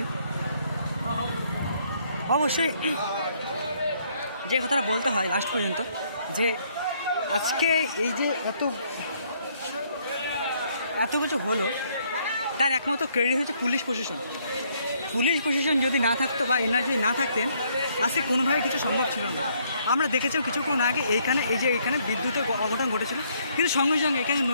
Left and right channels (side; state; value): both; inverted; correlation -0.68